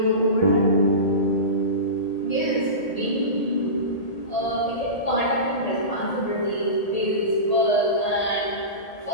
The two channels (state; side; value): late; right; 1.8 ms